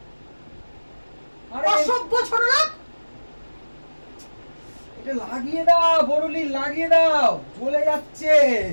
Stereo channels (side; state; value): both; inverted; correlation -1.00